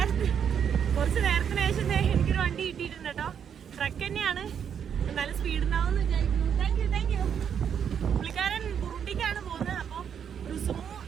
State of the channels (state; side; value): quieter; left; 8.0 dB